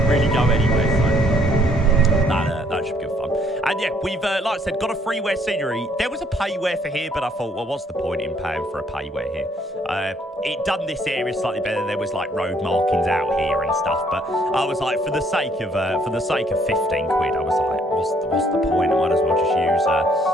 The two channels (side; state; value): both; normal; correlation 0.65